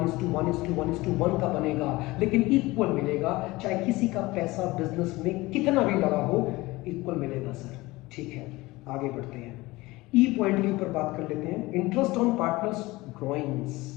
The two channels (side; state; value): right; quieter; 20.6 dB